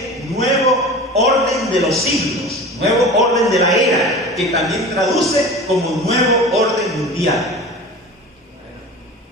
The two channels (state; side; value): normal; both; correlation 0.35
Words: nuevo orden de los siglos, nuevo orden de la era, que también traduce como nuevo orden mundial.